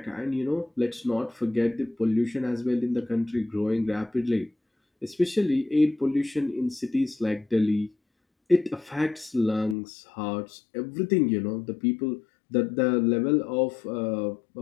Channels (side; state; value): right; drops out; at 9.8 s